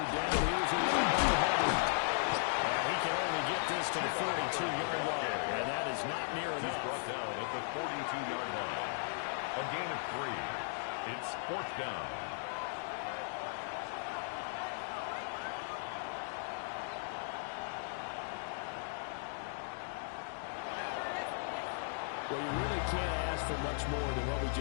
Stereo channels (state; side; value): silent; right; digital silence